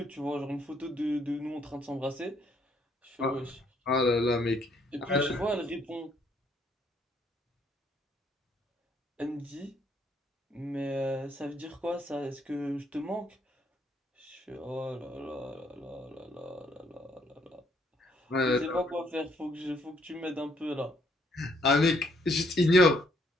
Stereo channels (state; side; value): normal; both; correlation 0.69